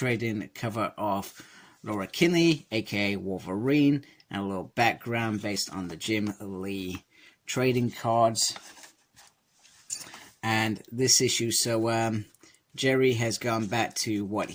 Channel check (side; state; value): both; identical; correlation 1.00